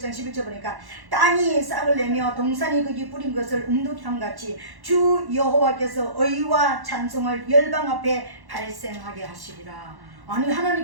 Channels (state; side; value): late; left; 1.1 ms